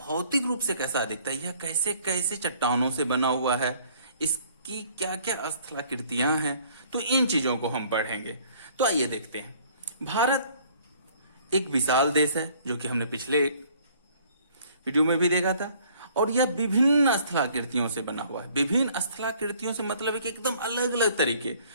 रूप से कैसा दिखता है, यह कैसे कैसे चट्टानों से बना हुआ है, इसकी क्या क्या स्थलाकृतियां हैं, तो इन चीजों को हम पढ़ेंगे। तो आइए देखते हैं। भारत एक विशाल देश है, जो कि हमने पिछले वीडियो में भी देखा था, और यह विभिन्न स्थलाकृतियों से बना हुआ है। विभिन्न स्थलाकृतियों से मतलब है कि एकदम अलग अलग तरीके।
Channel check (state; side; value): inverted; both; correlation -0.58